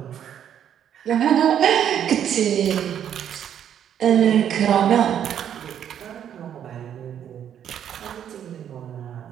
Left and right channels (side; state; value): left; quieter; 9.5 dB